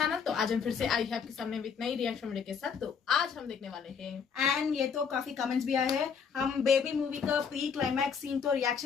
तो आज हम फिर से आई है आपके सामने विद नई रिएक्शन वीडियो के साथ। तो आज हम देखने वाले हैं एंड ये तो काफी कमेंट्स भी आए हैं। हम बेबी मूवी का प्री क्लाइमैक्स सीन तो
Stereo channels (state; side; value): quieter; right; 6.5 dB